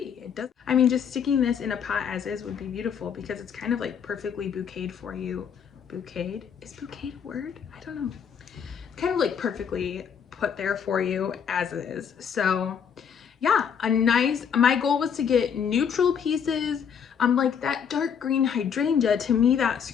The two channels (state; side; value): quieter; right; 7.4 dB